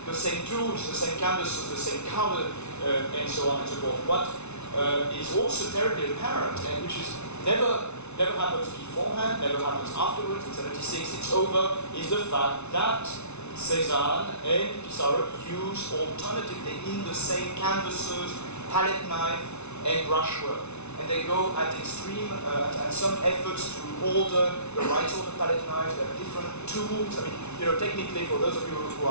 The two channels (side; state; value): right; late; 0.81 ms